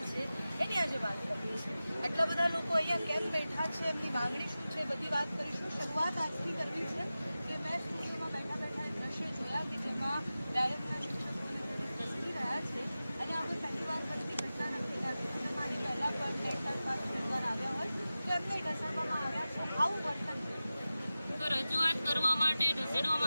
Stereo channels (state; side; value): inverted; both; correlation -0.95